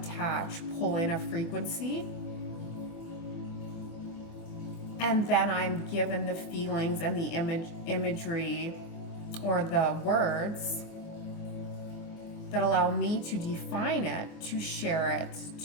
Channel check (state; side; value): late; right; 24 ms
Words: pull in a frequency, and then I'm given the feelings and the imagery or the words that allow me to define it, to share it